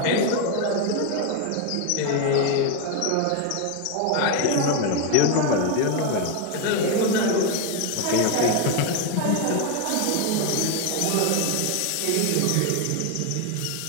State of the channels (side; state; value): both; different; correlation 0.01